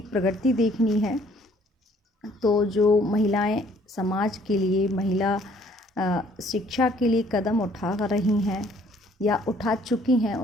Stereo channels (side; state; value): both; normal; correlation 0.60